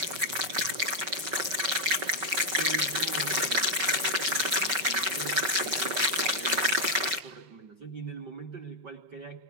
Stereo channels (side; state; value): left; late; 5.9 ms